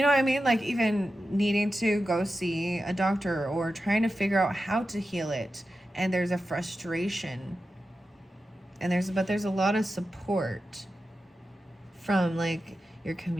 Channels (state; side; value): normal; both; correlation 0.91